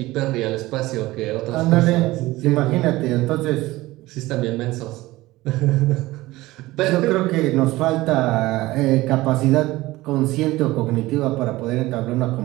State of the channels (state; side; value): quieter; left; 18.5 dB